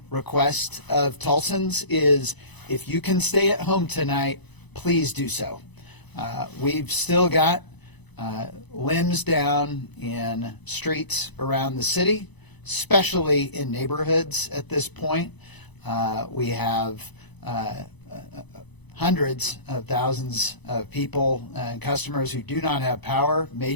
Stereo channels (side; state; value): right; late; 1.0 ms